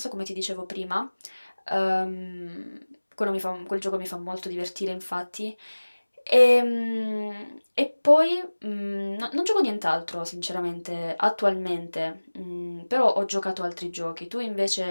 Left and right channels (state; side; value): inverted; both; correlation -1.00